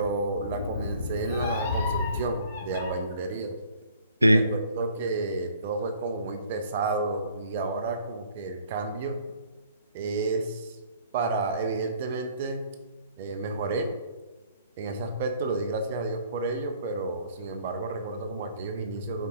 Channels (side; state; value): both; inverted; correlation -0.58